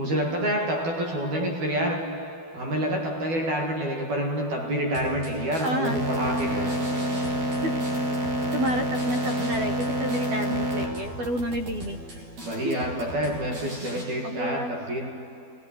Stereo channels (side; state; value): left; late; 12 ms